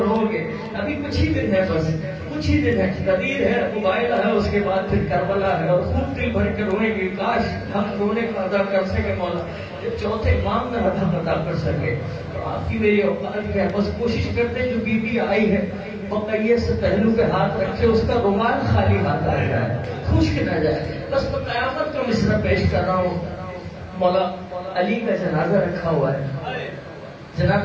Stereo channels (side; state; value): both; identical; correlation 1.00